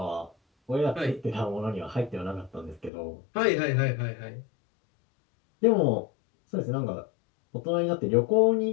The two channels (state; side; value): drops out; right; at 2.9 s